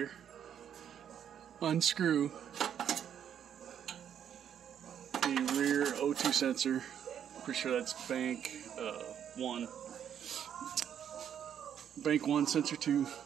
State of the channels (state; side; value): quieter; left; 9.1 dB